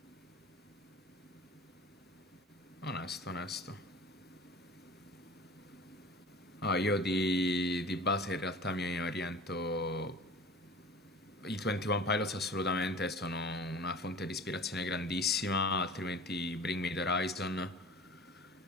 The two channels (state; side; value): normal; both; correlation 0.40